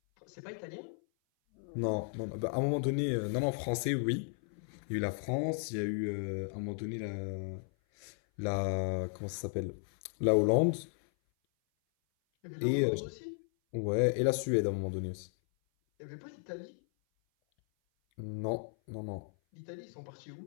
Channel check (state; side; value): silent; right; 54 dB below the other